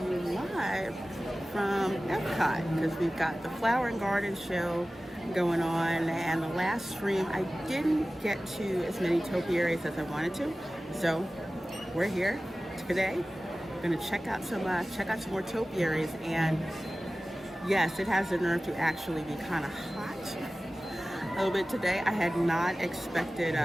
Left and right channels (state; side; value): normal; both; correlation 0.96